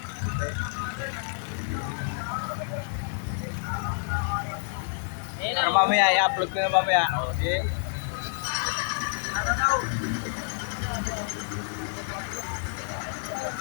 Pero mamaya, i-upload ko na mamaya. Okay.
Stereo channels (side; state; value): right; silent; 59 dB below the other